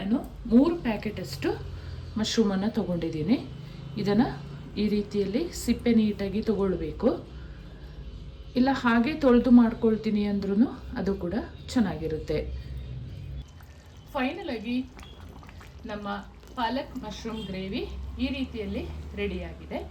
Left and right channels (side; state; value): both; identical; correlation 1.00